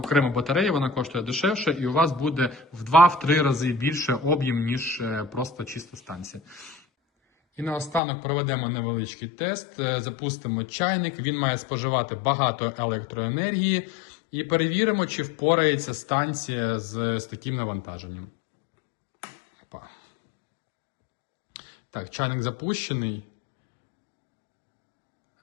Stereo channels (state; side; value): drops out; right; at 8.0 s